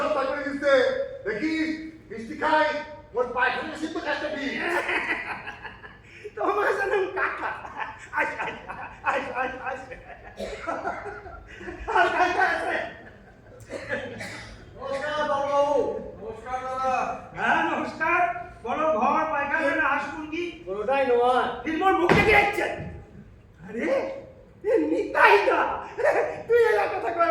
করে দিচ্ছে দেখিস মিষ্টি খাই ওর পায়খানা সিদ্ধ কাজটা দিই তোমার জানেন কাকা আজ আজ আজ আজ আজ আর কাকা আছে নমস্কার বাবু। নমস্কার দাদা। হ্যাঁ নমস্কার বড় ঘর পায়খানা হাঁসমুরগি পুরোটাই নয়। ফিল্মর মুখ থেকে যাচ্ছেন আরে এ নিতাই না তুই এলা কথা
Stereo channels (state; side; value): identical; both; correlation 1.00